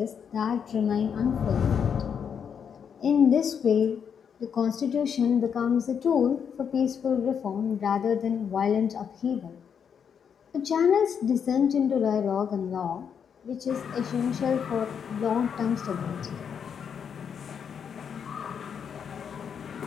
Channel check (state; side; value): quieter; right; 7.4 dB